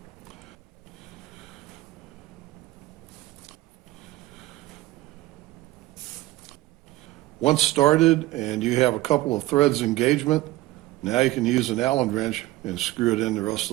Once started and you have a couple of threads engagement, now you can use an Allen wrench and screw it in the rest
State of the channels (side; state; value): left; quieter; 17.3 dB